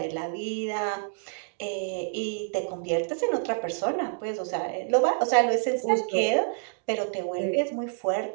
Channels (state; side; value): silent; left; digital silence